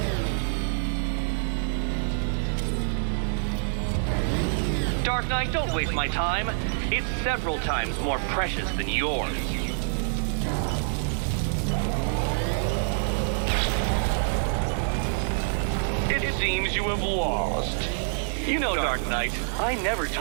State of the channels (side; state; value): left; silent; 61 dB below the other